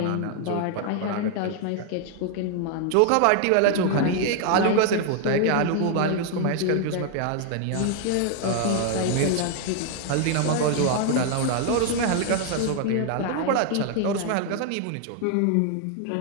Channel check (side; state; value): both; different; correlation 0.00